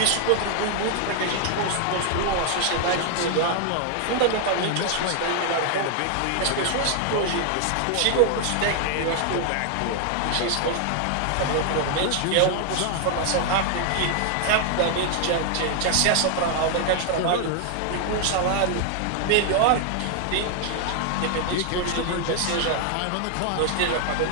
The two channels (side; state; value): both; different; correlation 0.00